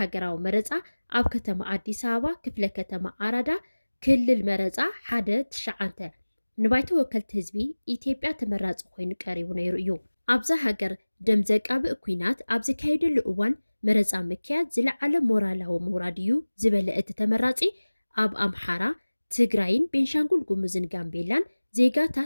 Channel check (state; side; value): inverted; both; correlation -1.00